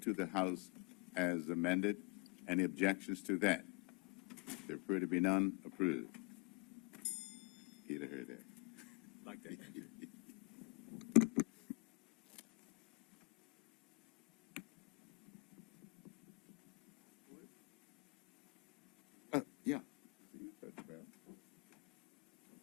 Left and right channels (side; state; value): right; quieter; 31.1 dB